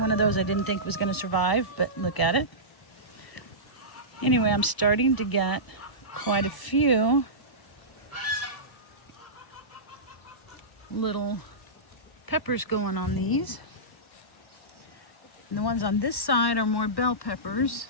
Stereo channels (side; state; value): right; late; 1.0 ms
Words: of those I didn't think was going to survive, but look at it. Anyway, I'm starting to get quite a few little peppers going on these. And the ones on this side are more bell peppers.